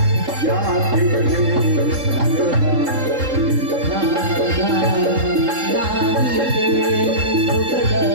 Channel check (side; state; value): left; late; 3.7 ms